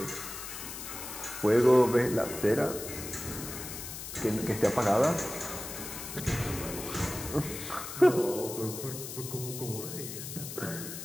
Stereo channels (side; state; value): left; noise; hiss, 9 dB below the sound